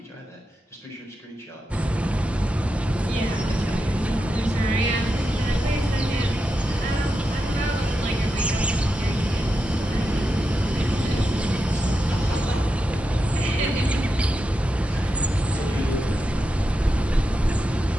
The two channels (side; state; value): both; normal; correlation 0.88